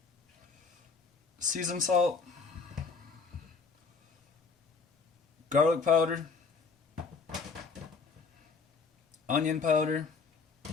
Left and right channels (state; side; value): quieter; right; 4.9 dB